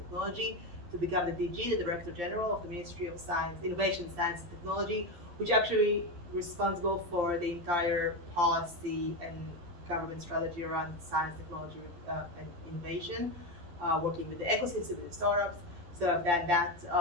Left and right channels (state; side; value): late; left; 12 ms